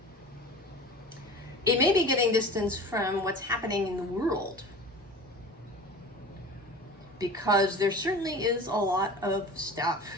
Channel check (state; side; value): normal; both; correlation 0.36